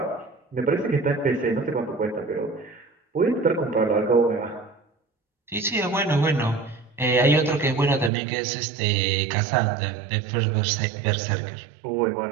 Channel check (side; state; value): left; drops out; at 8.1 s